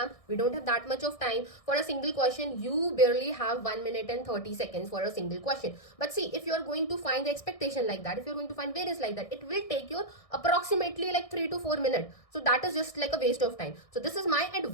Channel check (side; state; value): right; late; 1.6 ms